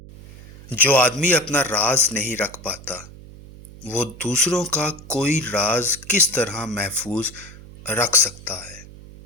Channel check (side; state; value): right; noise; hum, 18 dB below the sound